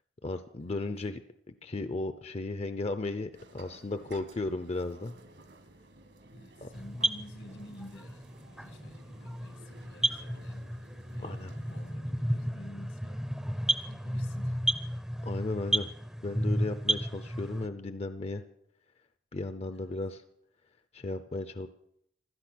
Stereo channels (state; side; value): normal; both; correlation 0.82